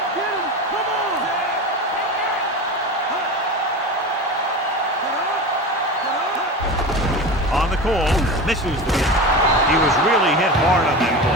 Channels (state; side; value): normal; both; correlation 0.28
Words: get him. Come on. On the call, misses the kick. He was really hit hard on that